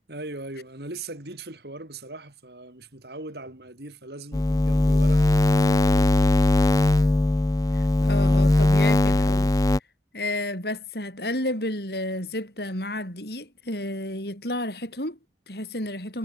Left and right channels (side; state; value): both; normal; correlation 0.87